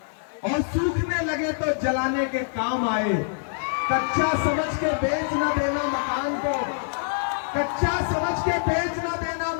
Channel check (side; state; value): right; silent; 61 dB below the other